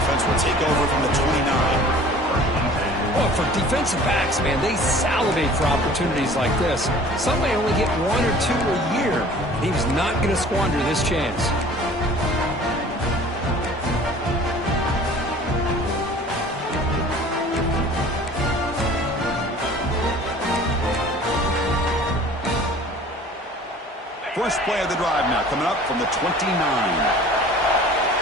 will take over from the 29. Well, for defensive backs, man, they salivate for opportunities like this. Some may only get 1 or 2 a year. He was not going to squander this chance. First play of the drive now coming up from the 29.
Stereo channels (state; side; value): normal; both; correlation 0.47